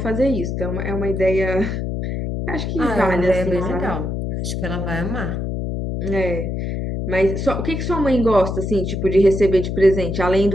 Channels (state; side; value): noise; left; hum, 3 dB below the sound